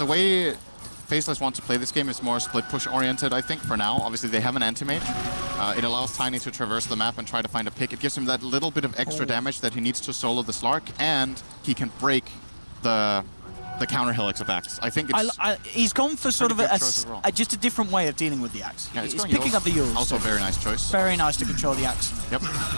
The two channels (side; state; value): both; inverted; correlation -1.00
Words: way Faceless wants to play this game is more split push oriented, I think, for now. Obviously, they have an anti-mage. It allows Tiny to traverse the map and try to find a pick. It gives him that little bit of extra damage that he needs to solo the Slark, and he can break the counter helix of Axe. I think it's he's gone for sort of just a different way of dealing with the Axe. Yeah, he's picking up the Yules. Also a very nice choice. Very nice to control the Axe. Yep.